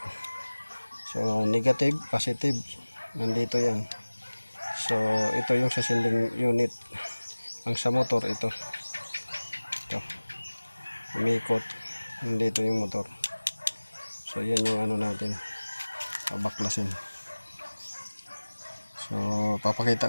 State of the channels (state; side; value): inverted; both; correlation -1.00